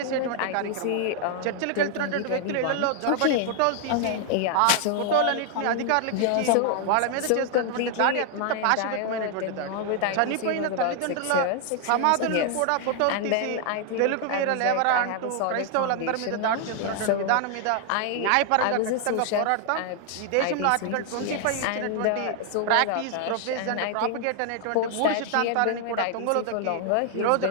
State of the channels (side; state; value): both; different; correlation 0.00